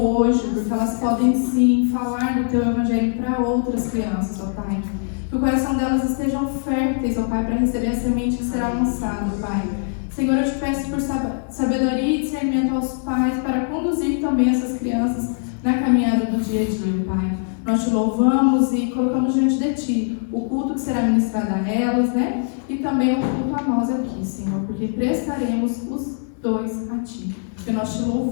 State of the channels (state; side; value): silent; right; digital silence